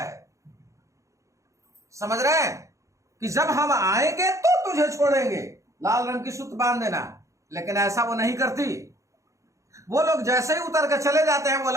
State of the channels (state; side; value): late; left; 0.15 ms